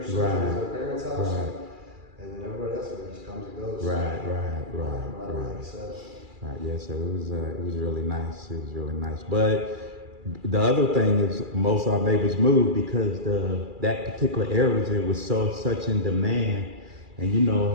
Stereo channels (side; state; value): left; late; 2.4 ms